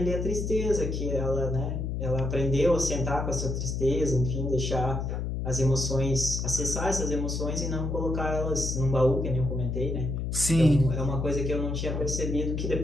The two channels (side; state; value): left; noise; hum, 2 dB below the sound